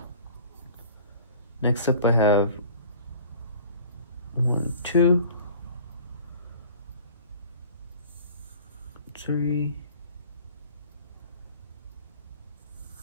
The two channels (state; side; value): inverted; both; correlation -0.46